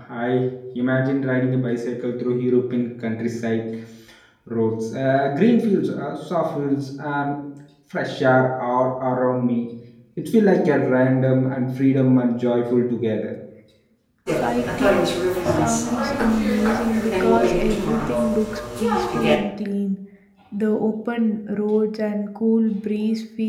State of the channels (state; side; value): identical; both; correlation 1.00